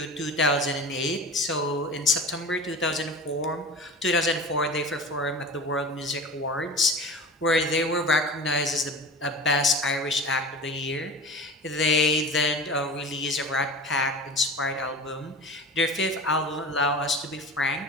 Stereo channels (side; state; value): both; normal; correlation 0.34